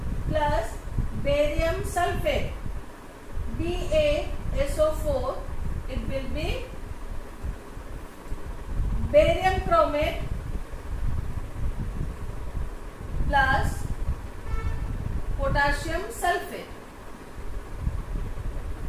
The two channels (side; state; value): both; identical; correlation 1.00